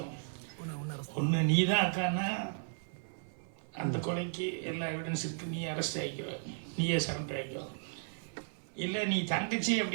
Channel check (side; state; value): left; silent; 54 dB below the other